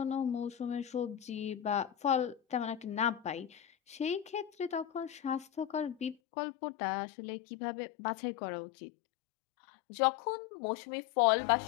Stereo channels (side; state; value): right; drops out; at 6.2 s